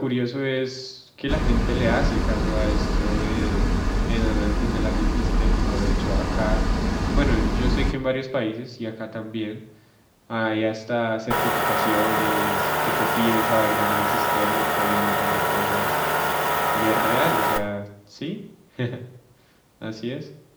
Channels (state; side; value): identical; both; correlation 1.00